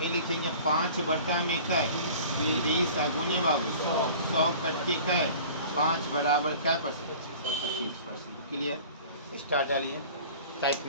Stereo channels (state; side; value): inverted; both; correlation -0.44